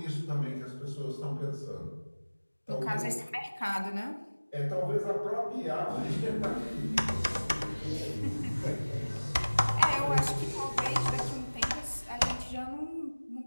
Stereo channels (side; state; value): both; inverted; correlation -1.00